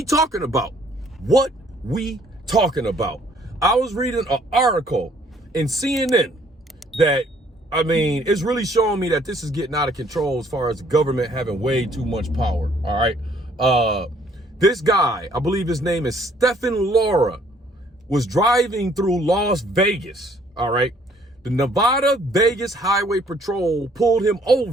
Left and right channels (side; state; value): both; normal; correlation 0.62